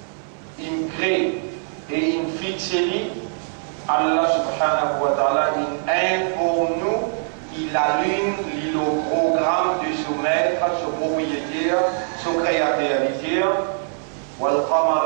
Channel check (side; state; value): left; silent; 60 dB below the other